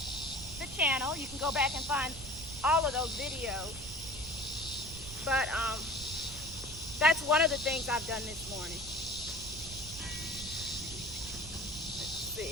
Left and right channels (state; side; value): noise; right; rumble, 13 dB below the sound